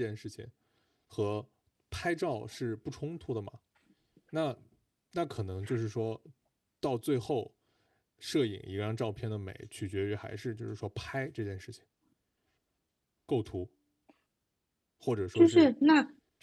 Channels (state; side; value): identical; both; correlation 1.00